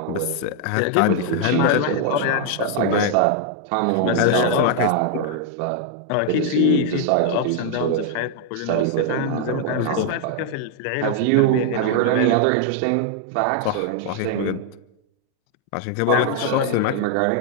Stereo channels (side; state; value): both; different; correlation 0.00